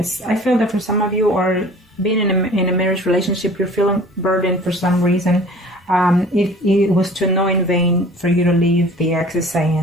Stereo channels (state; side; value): normal; both; correlation 0.47